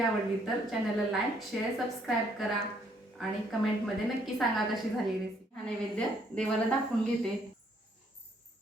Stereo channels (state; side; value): normal; both; correlation 0.68